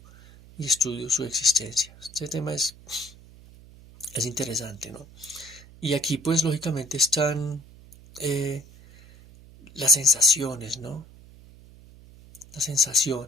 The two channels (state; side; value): noise; right; hum, 22 dB below the sound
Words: y estudio su existencia. Este tema es interesante, ¿no? Y aquí pues lógicamente están eh, las sensaciones, ¿no? Las